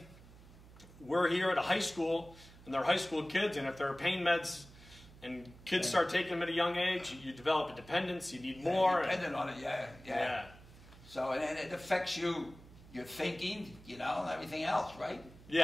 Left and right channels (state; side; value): noise; right; hum, 20 dB below the sound